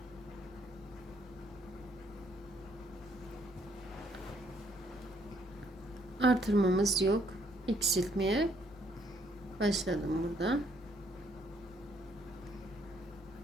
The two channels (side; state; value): both; normal; correlation 0.69